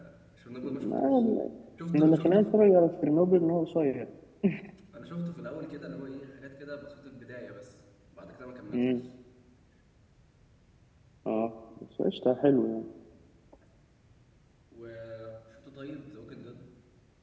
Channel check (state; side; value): identical; both; correlation 1.00